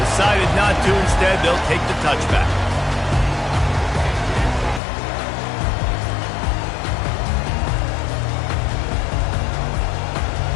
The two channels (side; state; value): right; drops out; at 4.8 s